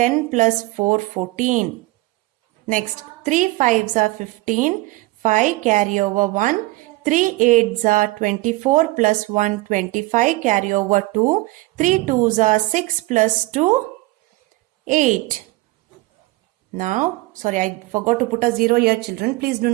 plus 4, 14. Next, 3 5s are 15. 5 carry over 1. 3 8s are 24 plus 1, 25. Carry over 2. 3 2s are 6 plus 2, 8. Now, sorry, I forgot to put a 0 here, children. Please do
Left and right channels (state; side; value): quieter; left; 21.1 dB